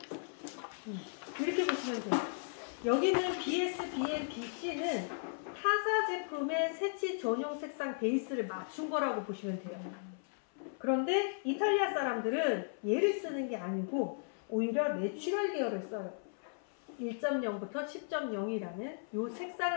이렇게 보시면 돼요. 여기는 BS, BM, BC는 타사 제품의 세치 전용 색상 베이스를 맞춘 거라고 보시면 돼요. 그런데 이탈리아 사람들은 얘를 쓰는 게 아니고 오히려 내추럴 계열을 써요. 1.0부터 10.0이라는 이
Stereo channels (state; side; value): silent; right; 54 dB below the other